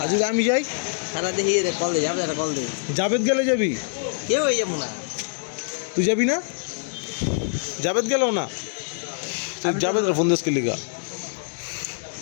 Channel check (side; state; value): right; silent; 62 dB below the other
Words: আর যদি আমি যাই সারা দেখি রে কল দে যাবে একটা কল দে জাবেদ গেলে যাবি কেউ হয়ে যাব না তুই যাবি না জাবেদ গেলেও না তুই জাবেদ ফোন দেশ লিগা